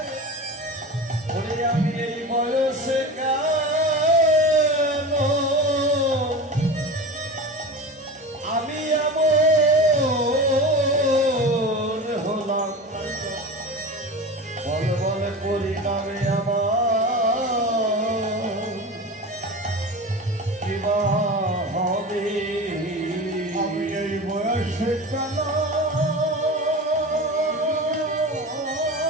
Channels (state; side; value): normal; both; correlation 0.30